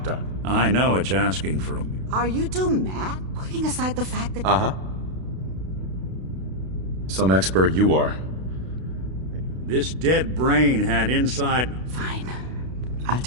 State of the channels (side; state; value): left; late; 32 ms